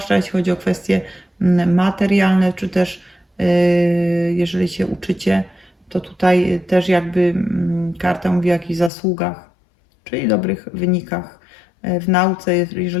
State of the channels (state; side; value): drops out; right; at 8.9 s